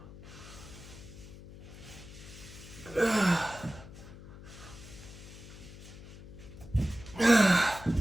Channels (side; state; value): left; noise; hum, 16 dB below the sound